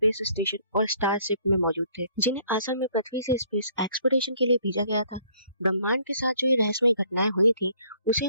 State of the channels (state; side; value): inverted; both; correlation -0.62